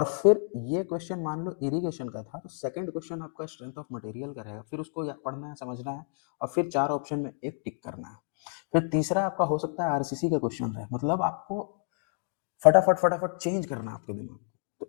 फिर ये क्वेश्चन मान लो इरिगेशन का था, तो सेकंड क्वेश्चन आपका स्ट्रेंथ ऑफ मटेरियल का है, फिर उसको पढ़ना है, समझना है, और फिर 4 ऑप्शन में एक टिक करना है। फिर तीसरा आपका हो सकता है आरसीसी का क्वेश्चन है, मतलब आपको फटाफट फटाफट चेंज करना है आपके दिमाग।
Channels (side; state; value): right; silent; 58 dB below the other